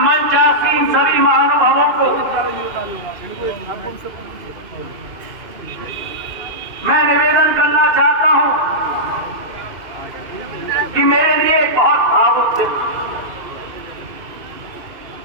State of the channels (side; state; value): left; late; 2.4 ms